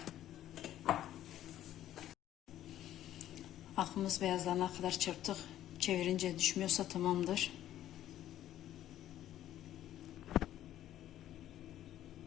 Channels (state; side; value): quieter; right; 12.5 dB